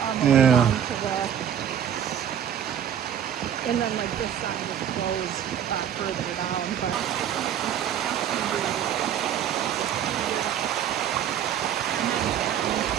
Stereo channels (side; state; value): left; quieter; 9.6 dB